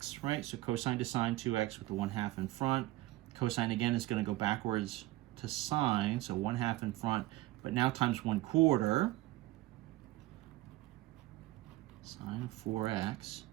right? So cosine to sine 2x with the 1/2 in front. Cosine again is going to go backwards to sine, so 1/2 in front, but now times 1/4 sine of 4x,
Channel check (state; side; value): quieter; left; 18.0 dB